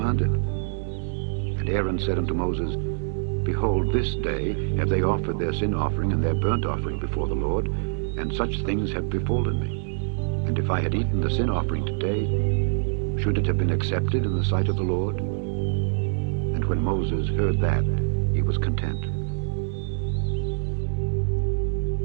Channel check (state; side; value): silent; left; digital silence